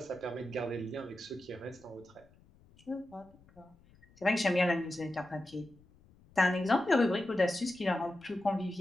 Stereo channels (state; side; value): noise; left; rumble, 28 dB below the sound